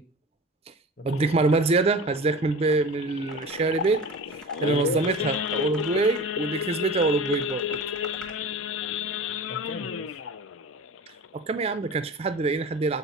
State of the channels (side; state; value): both; normal; correlation 0.35